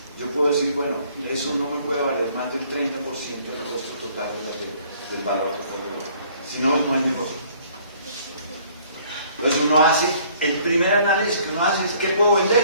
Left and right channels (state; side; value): inverted; both; correlation -0.59